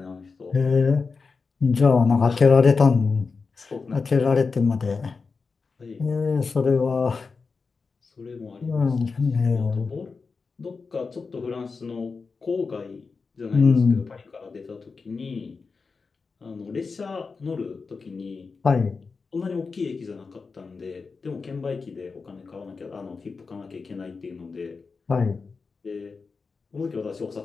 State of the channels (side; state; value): right; quieter; 4.7 dB